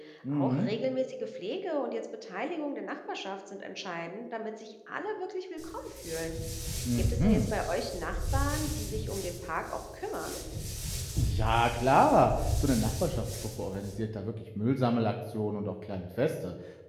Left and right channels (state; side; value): identical; both; correlation 1.00